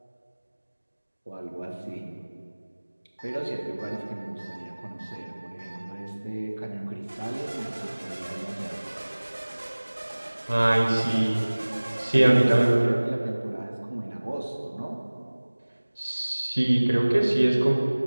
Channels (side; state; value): both; inverted; correlation -1.00